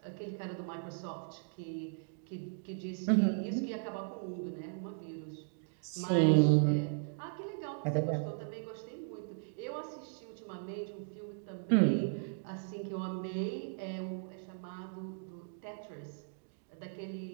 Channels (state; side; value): silent; left; digital silence